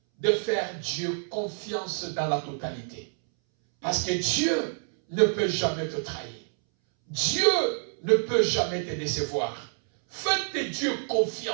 de faire Dieu confiance dans la totalité. Parce que Dieu ne peut jamais te trahir. Dieu ne peut jamais te décevoir. Faites Dieu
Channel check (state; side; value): silent; left; 60 dB below the other